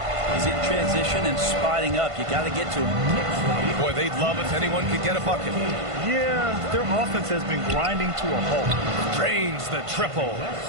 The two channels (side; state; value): left; late; 1.5 ms